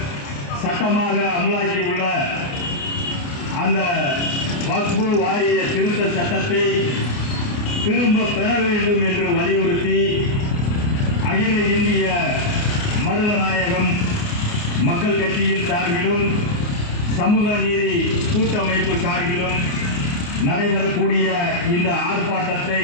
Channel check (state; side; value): late; right; 29 ms